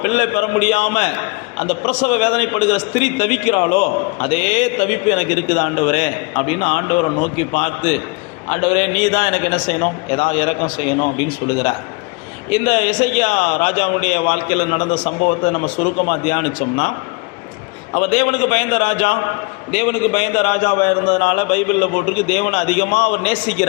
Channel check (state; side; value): quieter; right; 28.8 dB